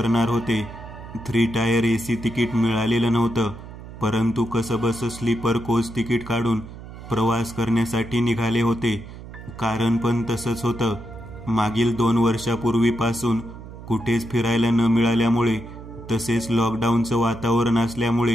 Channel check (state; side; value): noise; right; hum, 14 dB below the sound